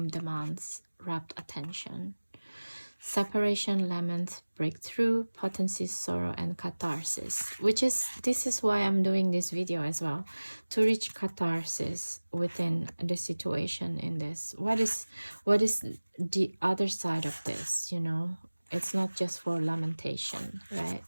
demands rapt attention. Separation, lament, breakthrough, potency, sorrow, and catharsis, which is, this is why I'm doing this video as well, to reach catharsis within the situation in this. What is the other side of this, you know? It's not just for lamentation, right?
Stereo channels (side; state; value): both; inverted; correlation -1.00